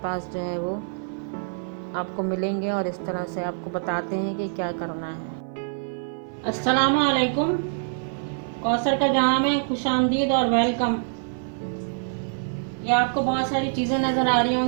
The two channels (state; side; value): silent; left; 57 dB below the other